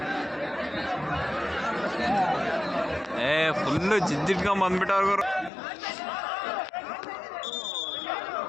ಫುಲ್ಲು ಜಿದ್ದಿಟ್ಕೊಂಡ್ ಬಂದ್ಬಿಟ್ಟವ್ರು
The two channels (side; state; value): right; drops out; at 5.5 s